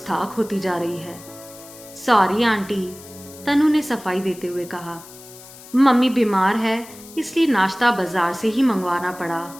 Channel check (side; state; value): left; noise; hiss, 19 dB below the sound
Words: होती जा रही है। सॉरी आंटी, तनु ने सफाई देते हुए कहा। मम्मी बीमार है, इसलिए नाश्ता बाजार से ही मंगवाना पड़ा।